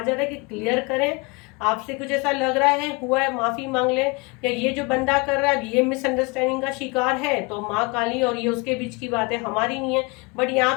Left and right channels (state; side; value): quieter; right; 28.0 dB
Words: जा रहा है कि क्लियर करें। आपसे कुछ ऐसा लग रहा है, हुआ है, माफी मांग ले, या ये जो बंदा कर रहा है ये मिसअंडरस्टैंडिंग का शिकार है, तो माँ काली और ये उसके बीच की बात है, हमारी नहीं है। बट यहाँ